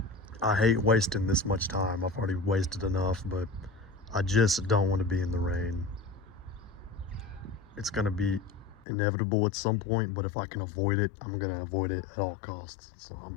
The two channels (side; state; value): right; drops out; at 8.8 s